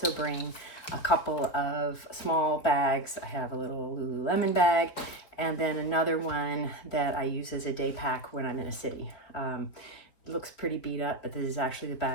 bring a couple of small bags. I have a little Lululemon bag and then another one that I use as a day pack when I'm in a city. It looks pretty beat up, but this is actually the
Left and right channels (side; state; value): right; late; 4.1 ms